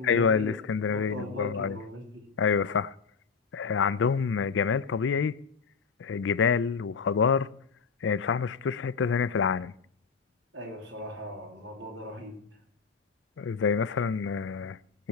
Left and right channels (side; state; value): right; quieter; 5.7 dB